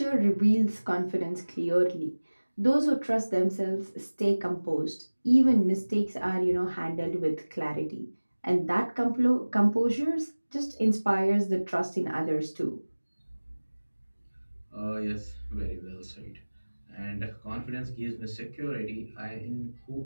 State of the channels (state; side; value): inverted; both; correlation -1.00